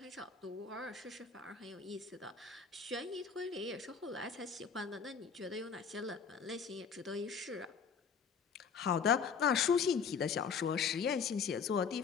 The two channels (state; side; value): quieter; right; 6.1 dB